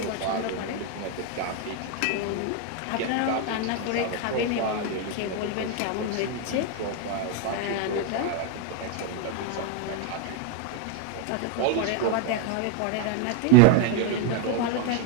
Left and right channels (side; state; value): both; different; correlation 0.02